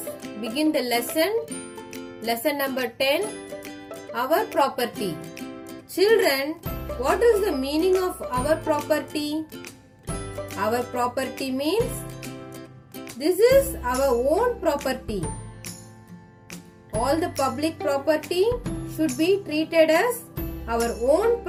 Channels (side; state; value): both; identical; correlation 1.00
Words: begin the lesson number 10, our property. Children, what is the meaning of our property? Our property means this is our own property. All the public property should be treated as our own